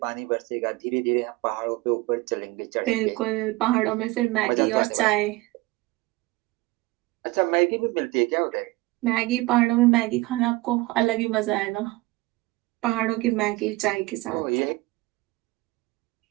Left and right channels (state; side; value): quieter; left; 21.1 dB